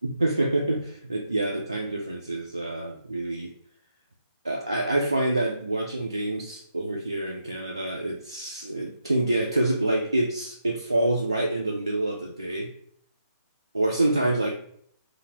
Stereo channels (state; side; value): inverted; both; correlation -0.83